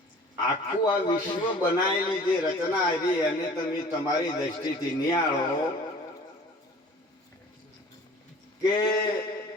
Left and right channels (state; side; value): normal; both; correlation 0.46